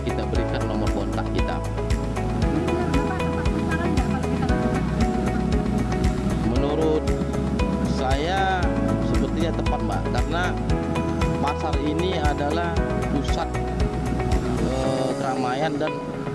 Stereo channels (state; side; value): identical; both; correlation 1.00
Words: kita berikan nomor kontak kita. Ini menurut Bapak tepat sasaran nggak kalau kita lakukan ini? Menurut saya sepertinya tepat Mbak, karena pasar ini adalah pusat keramaian dan